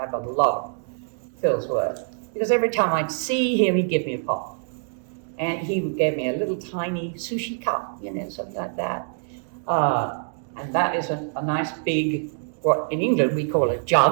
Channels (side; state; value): left; silent; 62 dB below the other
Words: have a lot of Phil's work, because every time I'd see him, he'd give me a pot. And he gave me a little tiny sushi cup, something like that. And that is a nice big, what in England we call a